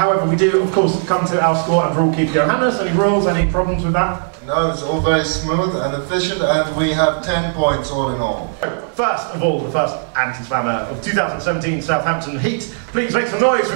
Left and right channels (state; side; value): silent; left; 68 dB below the other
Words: we do, of course, come to our score and rule keeper Johannes. Any rules, any problems with that? No, it's all very smooth and efficient, and we have 10 points all in all. First of all, the first anti-slammer of 2017 Southampton Heat. Please make some noise